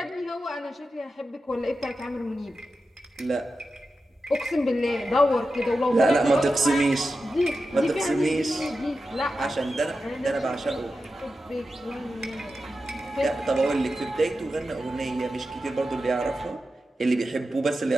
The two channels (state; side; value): normal; both; correlation 0.91